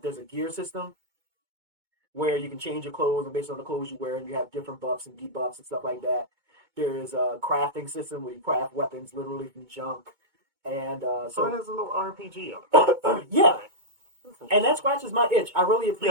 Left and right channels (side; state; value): left; late; 2.2 ms